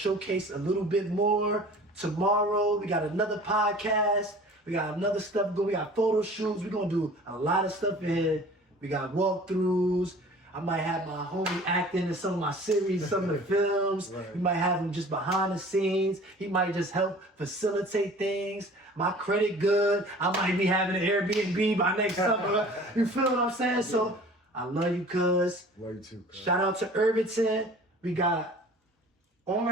a little bit more tomorrow. We got another podcast. We got another stuff going. We got photo shoots. We're going to do a lot of stuff in here. We got walkthroughs. I might have my homie acting in some of my series, some of the films. Right. We might have him just behind the scenes. He might just help facilitate things. My credit good. I might be having an Airbnb by next summer. You feel what I'm saying? So I love you, cuz. Love you too, cuz. Shout out to Irvington. We got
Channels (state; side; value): normal; both; correlation 0.45